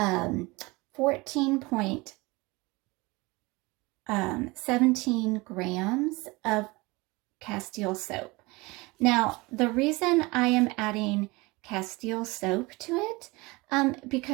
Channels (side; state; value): left; quieter; 23.9 dB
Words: grams of Castile soap. Now, the reason I am adding Castile soap to it,